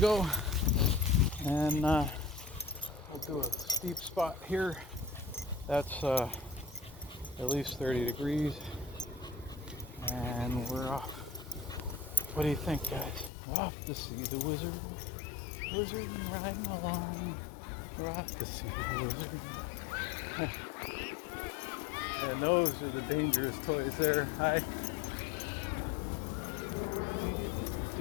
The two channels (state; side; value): drops out; right; at 13.3 s